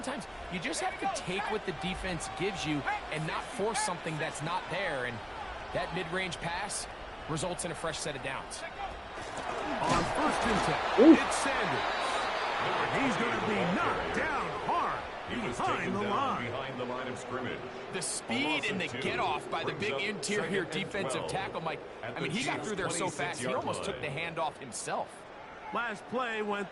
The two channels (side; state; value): both; identical; correlation 1.00